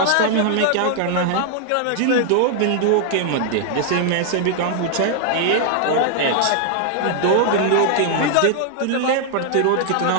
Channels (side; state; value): both; different; correlation 0.00